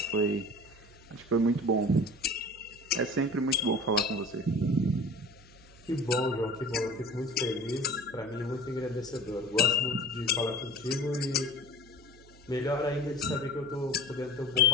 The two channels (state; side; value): noise; right; hum, 23 dB below the sound